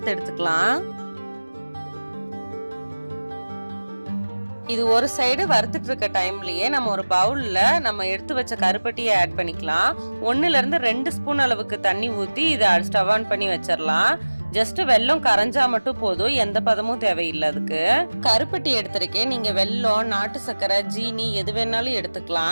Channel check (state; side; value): inverted; both; correlation -1.00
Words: எடுத்துக்கலாம். இது ஒரு சைடு வறுத்துட்டு இருக்க டைம்லயே நம்ம ஒரு பவுல்ல நம்ம எடுத்து வச்ச கருப்பட்டியை ஆட் பண்ணிக்கலாம். 1ல இருந்து 2 ஸ்பூன் அளவுக்கு தண்ணி ஊத்தி இதை ஸ்டவ் ஆன் பண்ணி வச்சிடலாம். ஜஸ்ட் வெல்லம் கரைஞ்சா மட்டும் போதும், எந்த பதமும் தேவையில்லை. அதுக்கு கருப்பட்டி எடுத்திருக்கேன். நீங்க வெல்லம், நாட்டு சர்க்கரை, ஜீனி எது வேணாலும்